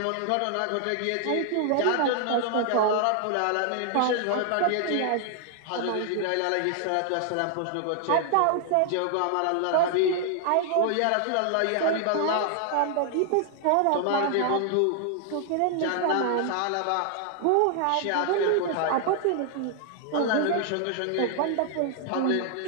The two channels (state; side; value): different; both; correlation 0.00